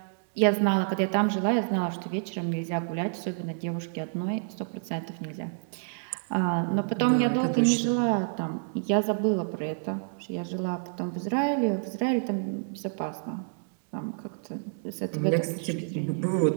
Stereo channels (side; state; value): left; silent; digital silence